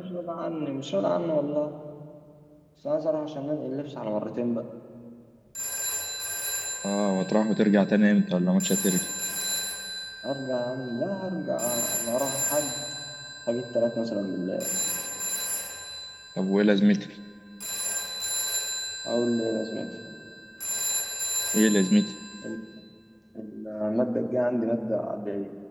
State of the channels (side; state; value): both; identical; correlation 1.00